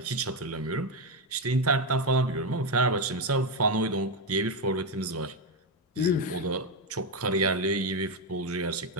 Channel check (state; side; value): normal; both; correlation 0.08